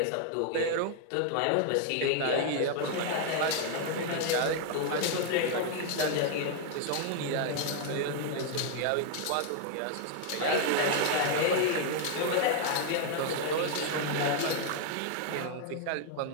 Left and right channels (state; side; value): different; both; correlation 0.00